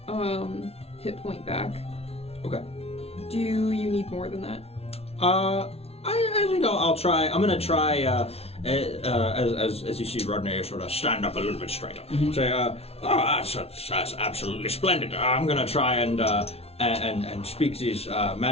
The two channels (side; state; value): right; late; 0.30 ms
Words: hit point back. Okay. Do you need more than that? I think I'll try. I'm gonna try. As you see Rodney sort of stand up a little bit straighter. Say, that's absolutely splendid. I'm gonna try and speak these